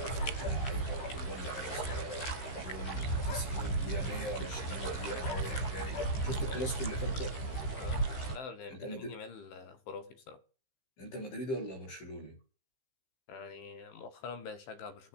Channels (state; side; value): late; right; 15 ms